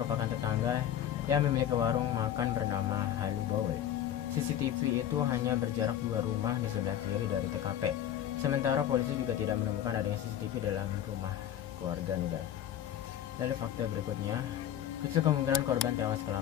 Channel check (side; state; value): right; quieter; 10.8 dB